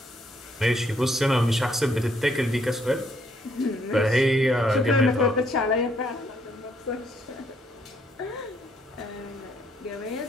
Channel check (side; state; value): both; normal; correlation 0.70